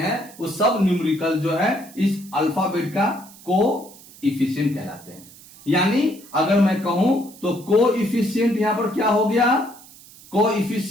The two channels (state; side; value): noise; right; hiss, 21 dB below the sound